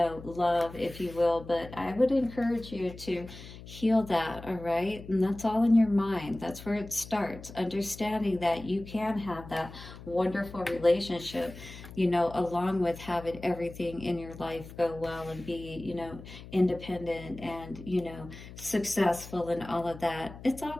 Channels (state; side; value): noise; left; hum, 15 dB below the sound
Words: love, if you will. But I would encourage you to heal that, all right? And that's all in your mind. That's where it starts, understanding that you can have that wonderful relationship. you know, along with having everything in your life go well and be, you know, independent and, you know, successful and all of that, it's all